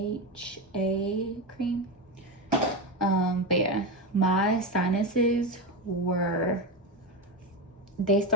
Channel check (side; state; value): both; normal; correlation 0.15